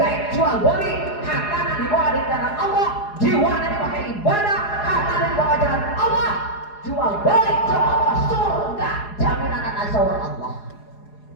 jual beli hartana dibawa di jalan Allah, jiwana dipakai ibadah, hartana dibawa jalan Allah. Jual beli jalan Allah, surga jaminan anak saur Allah.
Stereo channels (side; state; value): right; late; 4.8 ms